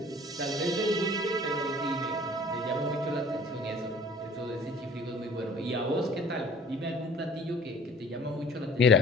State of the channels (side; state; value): both; normal; correlation 0.50